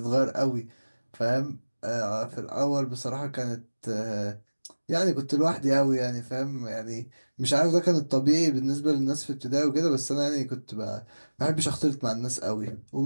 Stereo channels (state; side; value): inverted; both; correlation -1.00